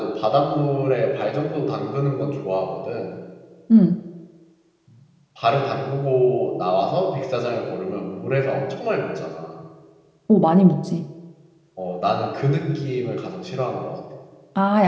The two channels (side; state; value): both; identical; correlation 1.00